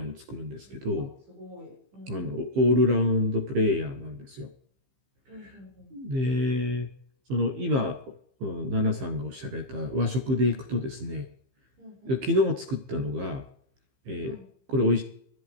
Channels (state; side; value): late; left; 15 ms